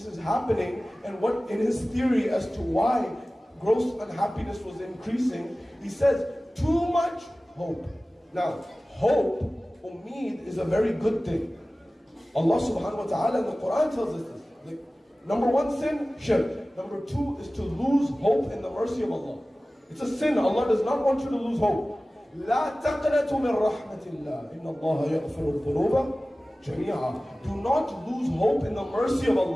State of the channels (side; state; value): both; normal; correlation 0.97